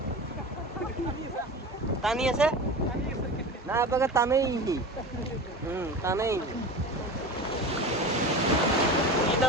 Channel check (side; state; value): both; normal; correlation 0.31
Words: টানি আছে না আপনাকে টানেই ই